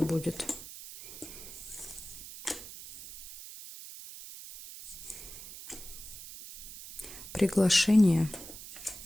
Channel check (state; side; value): noise; right; hiss, 13 dB below the sound